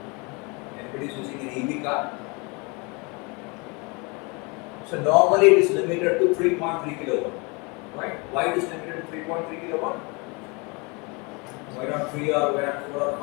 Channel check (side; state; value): right; quieter; 29.3 dB